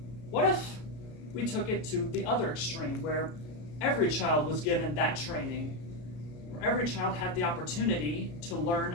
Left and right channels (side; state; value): right; late; 33 ms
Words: what if we took it to the other extreme, where every child was given that training, where every child had the opportunity to learn